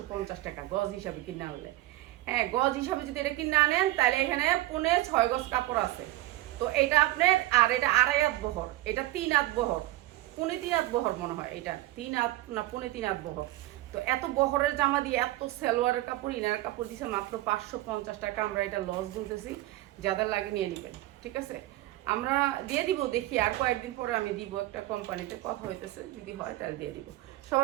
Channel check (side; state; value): left; quieter; 17.3 dB